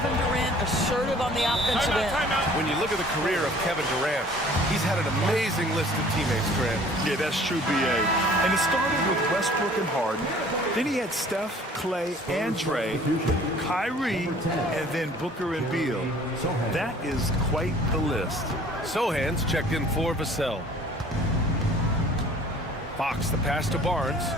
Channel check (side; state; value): both; normal; correlation 0.52